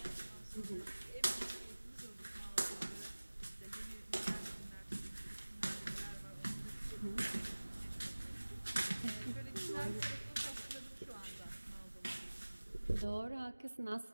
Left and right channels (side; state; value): both; inverted; correlation -1.00